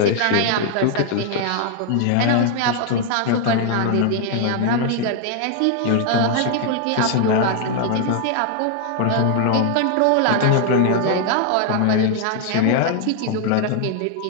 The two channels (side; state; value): both; different; correlation 0.00